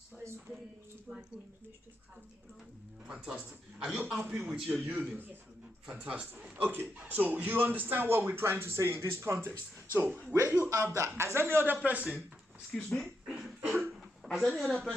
fantastic. Are you happy with your union? Yes. Fantastic. Okay, so you understand what we're trying to say in this context. So where you have that, has any other person, excuse me, has any other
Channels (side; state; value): both; normal; correlation 0.83